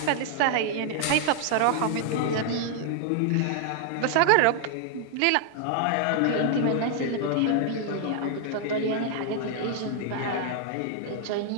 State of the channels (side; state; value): both; different; correlation 0.00